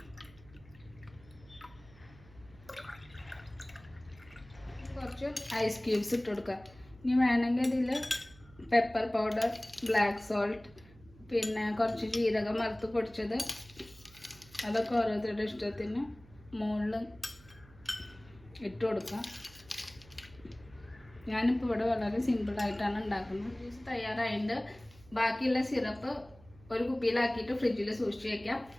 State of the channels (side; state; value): right; noise; hum, 23 dB below the sound